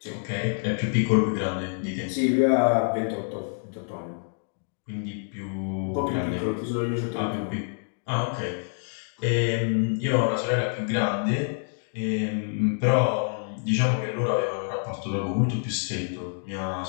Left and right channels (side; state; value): right; silent; 58 dB below the other